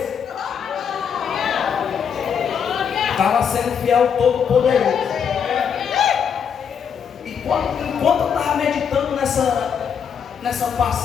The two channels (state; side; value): quieter; right; 7.4 dB